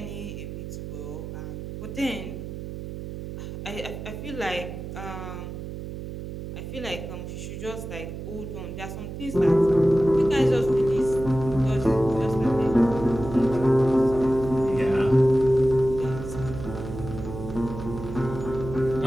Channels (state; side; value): noise; right; hum, 9 dB below the sound